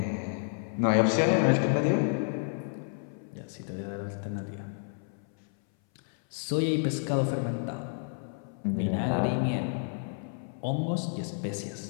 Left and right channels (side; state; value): right; silent; 58 dB below the other